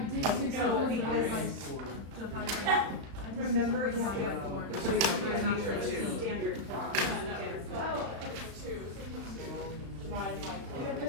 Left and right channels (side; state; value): left; late; 35 ms